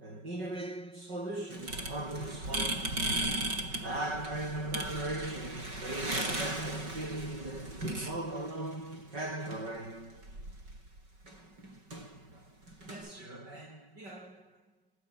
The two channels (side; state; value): left; late; 5.3 ms